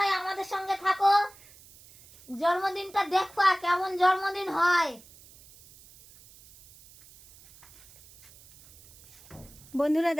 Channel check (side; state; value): right; noise; hiss, 24 dB below the sound